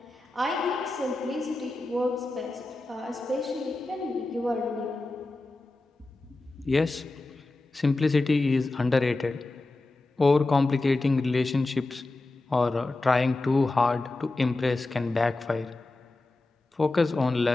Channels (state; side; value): quieter; right; 3.0 dB